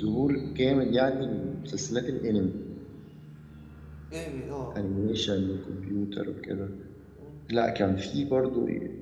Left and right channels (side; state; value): both; identical; correlation 1.00